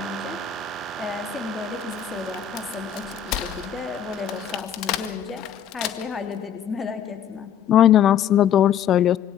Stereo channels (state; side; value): quieter; right; 9.1 dB